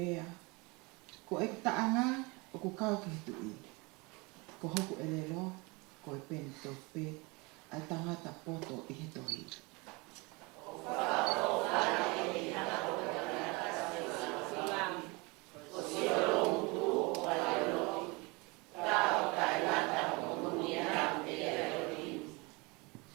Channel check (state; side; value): quieter; left; 26.8 dB